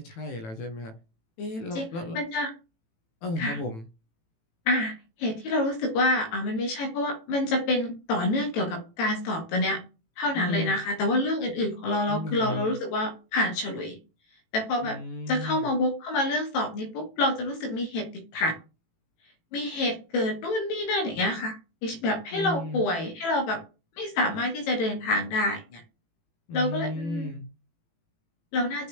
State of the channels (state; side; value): late; right; 18 ms